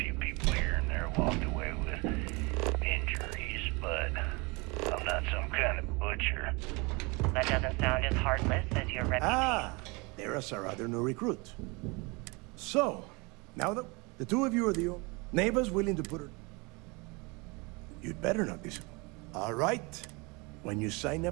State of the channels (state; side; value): quieter; left; 27.7 dB